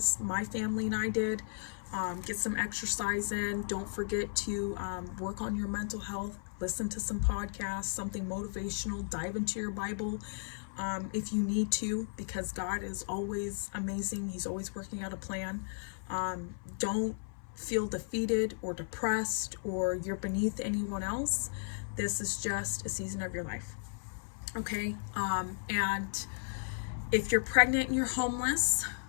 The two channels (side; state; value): right; silent; 54 dB below the other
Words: My family and I did. Get some exercise in. Don't forget to work on your mental health. Listen to some podcasts, something motivational. Dive into your Bible if you need to, because God is always amazing. He's always working out a plan. Don't feel defeated or depressed or you're beneath anyone else. This is just a season of your life. Okay? And if you're pregnant and you're homeless,